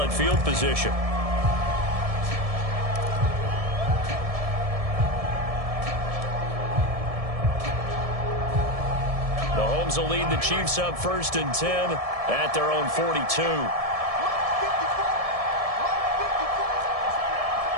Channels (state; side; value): late; left; 1.7 ms